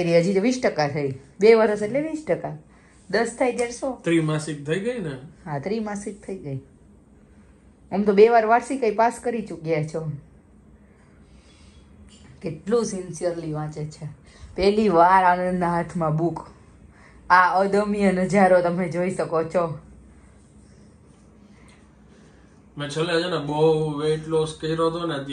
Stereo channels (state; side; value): identical; both; correlation 1.00